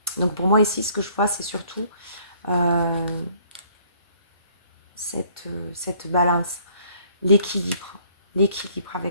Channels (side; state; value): both; inverted; correlation -0.61